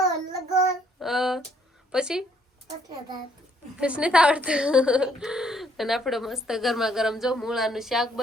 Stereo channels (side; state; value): both; normal; correlation 0.67